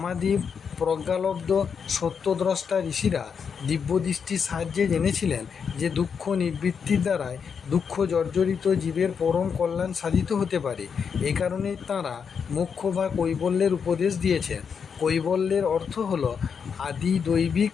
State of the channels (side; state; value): right; quieter; 6.5 dB